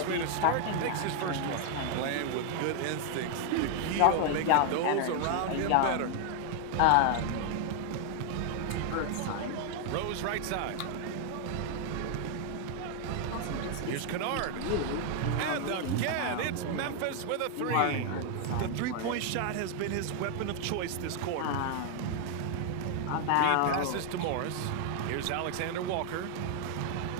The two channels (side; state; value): both; different; correlation 0.00